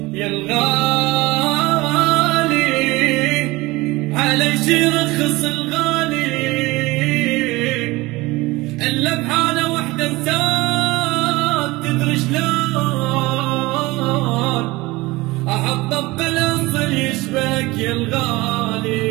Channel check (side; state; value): left; quieter; 21.2 dB